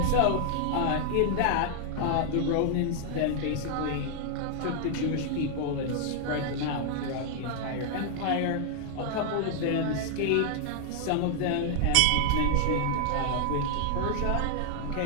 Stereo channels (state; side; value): different; both; correlation 0.00